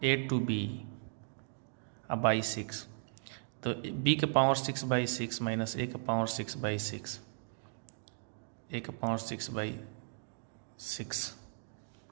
a टू b बाई 6, तो b के पावर 6/6 माइनस a के पावर 6/6, a के पावर 6/6,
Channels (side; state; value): left; silent; digital silence